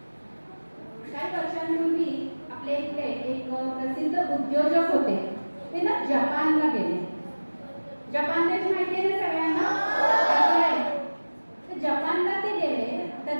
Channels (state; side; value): inverted; both; correlation -1.00